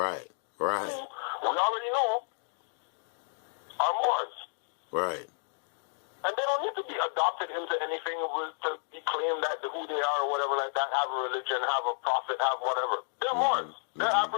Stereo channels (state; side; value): silent; right; digital silence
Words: already know are Moors. Right. And they don't need to be adopted into anything to be claimed that who they are or whatever like that, have a religion, have a prophet, have whatever. They're Moors. They're